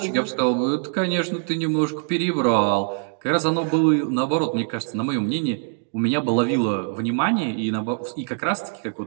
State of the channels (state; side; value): silent; left; digital silence